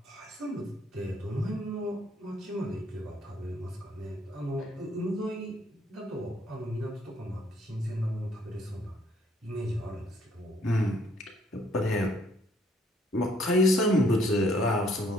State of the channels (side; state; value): both; normal; correlation 0.65